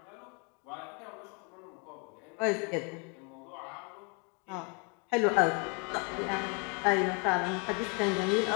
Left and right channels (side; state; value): right; quieter; 34.6 dB